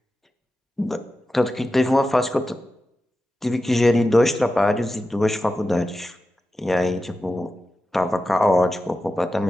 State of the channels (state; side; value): normal; both; correlation 0.92